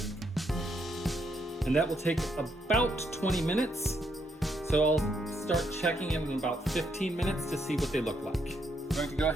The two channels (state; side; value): normal; both; correlation 0.76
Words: And that will take about 20 minutes. So I'll start checking in about 15 minutes to see what they look like. I'm going to go